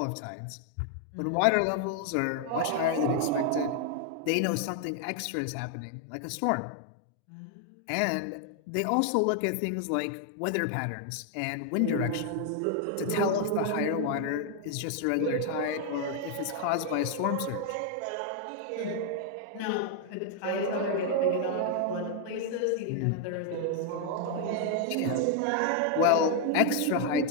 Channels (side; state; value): both; different; correlation 0.00